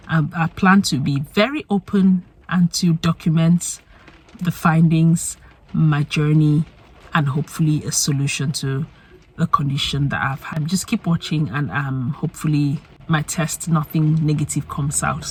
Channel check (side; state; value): both; identical; correlation 1.00